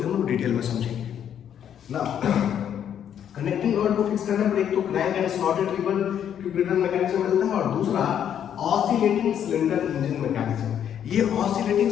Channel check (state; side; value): quieter; right; 9.3 dB